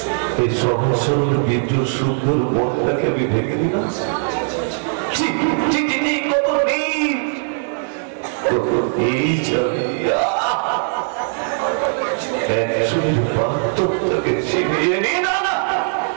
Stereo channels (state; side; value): silent; left; 62 dB below the other